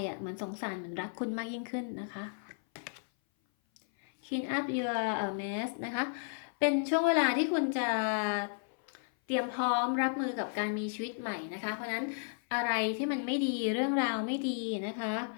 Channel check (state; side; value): silent; right; 55 dB below the other